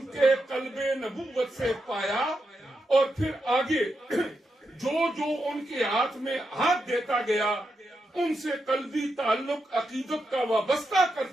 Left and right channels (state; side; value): normal; both; correlation 0.85